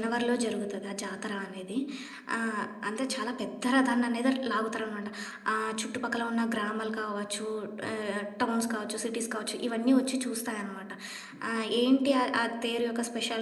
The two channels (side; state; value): both; identical; correlation 1.00